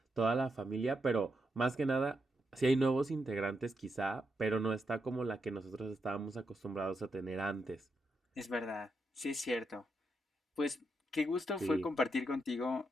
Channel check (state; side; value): normal; both; correlation 0.83